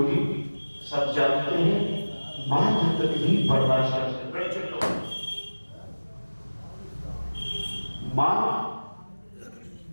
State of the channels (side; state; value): both; inverted; correlation -1.00